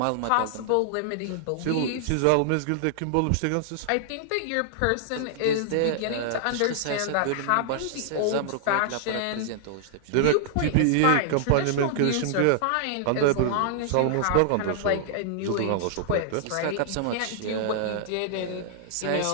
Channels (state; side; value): different; both; correlation -0.01